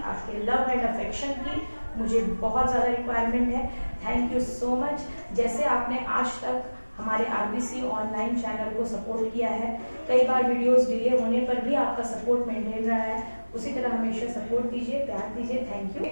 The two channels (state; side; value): inverted; both; correlation -1.00